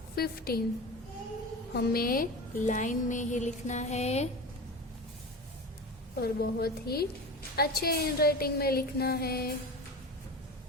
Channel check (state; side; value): normal; both; correlation 0.29